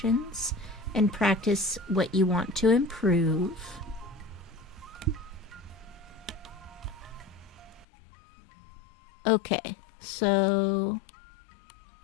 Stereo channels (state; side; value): drops out; right; at 7.9 s